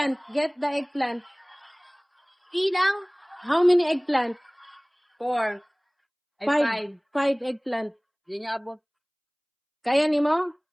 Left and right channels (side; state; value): both; identical; correlation 1.00